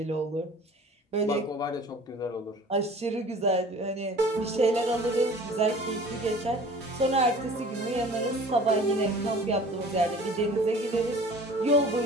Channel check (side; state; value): both; normal; correlation 0.46